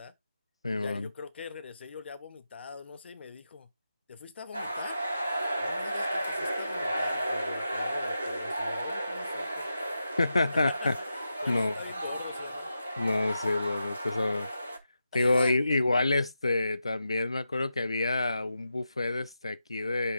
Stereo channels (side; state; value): both; inverted; correlation -0.88